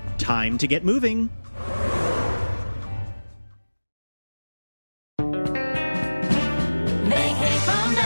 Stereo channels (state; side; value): inverted; both; correlation -1.00